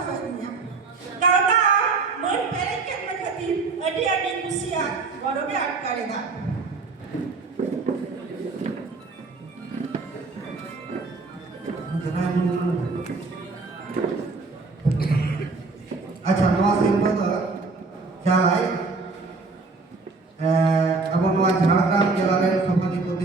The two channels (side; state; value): left; quieter; 4.0 dB